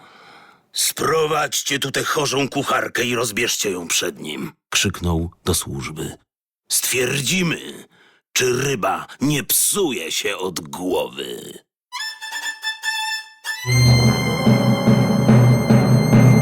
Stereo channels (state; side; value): identical; both; correlation 1.00